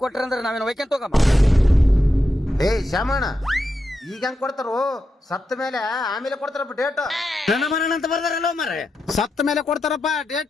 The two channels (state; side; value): normal; both; correlation 0.87